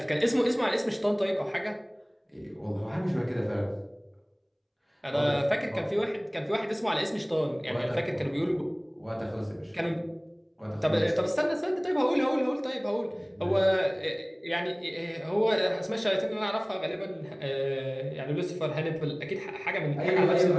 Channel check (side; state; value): both; identical; correlation 1.00